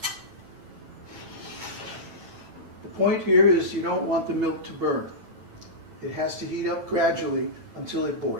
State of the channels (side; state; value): left; late; 9.0 ms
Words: The point here is you don't want the milk to burn. It has to heat up gradually until it